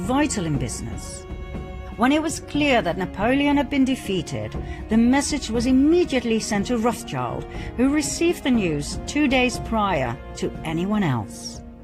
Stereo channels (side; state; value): both; identical; correlation 1.00